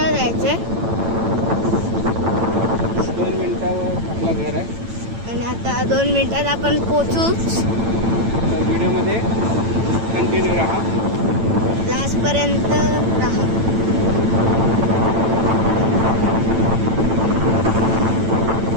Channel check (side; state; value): left; late; 8.9 ms